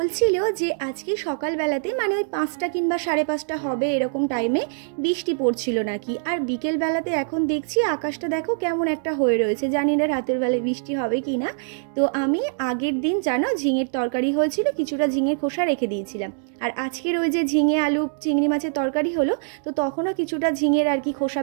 যে আজকে সকালবেলাতে মানে ওই 5টা কিংবা 5:30 হবে এরকম টাইমে বৃষ্টি পড়ছিল নাকি। আর বিকেলবেলাতে এখন দেখছি আকাশটা দেখো কেমন একটা হয়ে রয়েছে, জানি না রাতের বেলায় বৃষ্টি হবে কি না। তো আমি আগের দিন জানো ঝিঙের তরকারি হয়েছিল, কিছুটা ঝিঙের খোসা রেখে দিয়েছিলাম। আর আজকের ওই যে ঝিঙে আলু চিংড়ি মাছের তরকারি হলো, তো তখনও কিছুটা ঝিঙের আর কি খোসা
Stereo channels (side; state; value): left; silent; digital silence